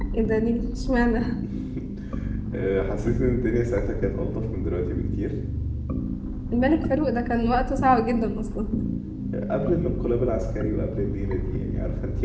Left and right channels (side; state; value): both; identical; correlation 1.00